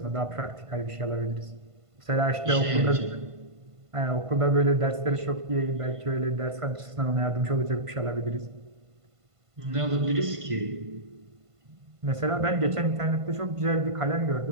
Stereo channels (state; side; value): late; left; 1.5 ms